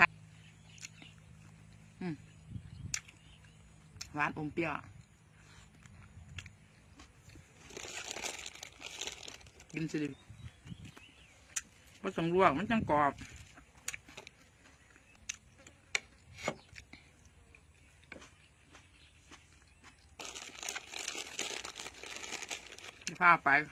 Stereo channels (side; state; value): both; identical; correlation 1.00